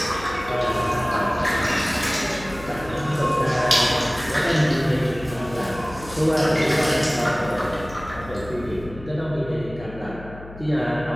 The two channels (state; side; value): noise; left; hum, 16 dB below the sound